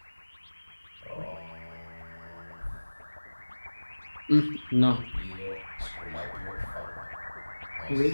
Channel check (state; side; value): inverted; both; correlation -1.00